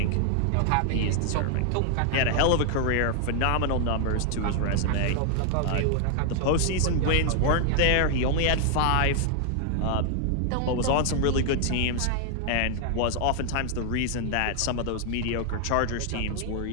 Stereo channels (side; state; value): both; different; correlation 0.00